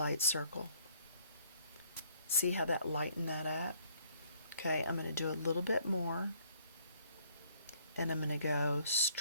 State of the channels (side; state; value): both; inverted; correlation -0.64